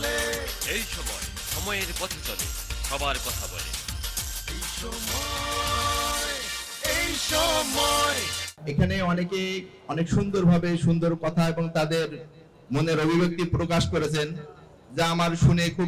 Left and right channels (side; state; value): both; identical; correlation 1.00